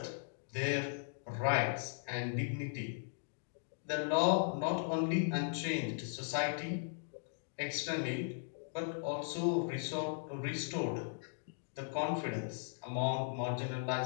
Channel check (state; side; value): silent; right; digital silence